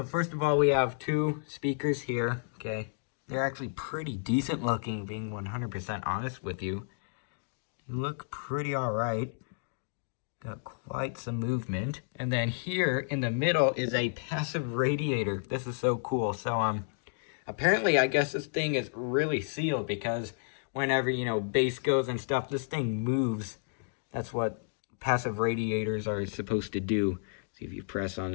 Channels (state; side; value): silent; right; digital silence